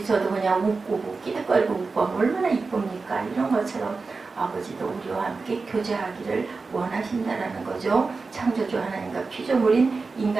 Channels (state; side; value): quieter; left; 4.2 dB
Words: 그냥 웃고 끼득거리고 웃고 하면 얼마나 이쁩니까? 이런 것처럼 아버지도 우리와 함께 교제하기를 원하신다라는 거죠. 창조주 하나님과 피조물인